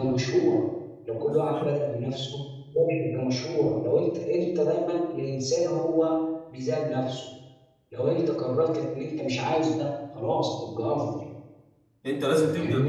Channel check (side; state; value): both; identical; correlation 1.00